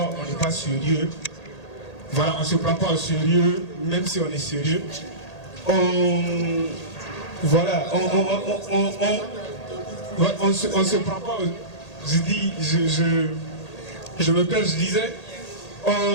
on n'est pas sérieux. Voilà, on ne se prend pas au sérieux, même si on est sérieux. Voilà, on se prend pas. Je me perds, je disais,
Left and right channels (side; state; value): right; late; 1.8 ms